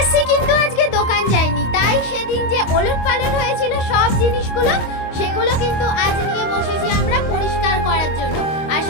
কিন্তু আজকে দোকান যায়নি, তাই সেদিন যে ওলট পালট হয়েছিল সব জিনিসগুলো, সেগুলো কিন্তু আজ নিয়ে বসেছি আমরা পরিষ্কার করার জন্য। আর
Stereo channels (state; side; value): late; right; 25 ms